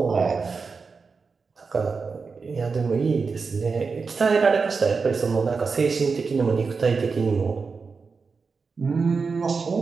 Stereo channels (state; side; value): quieter; left; 4.9 dB